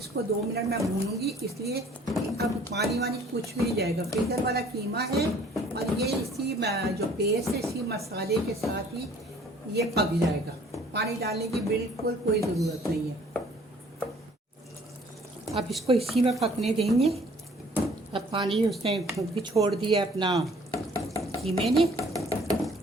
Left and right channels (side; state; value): both; normal; correlation 0.56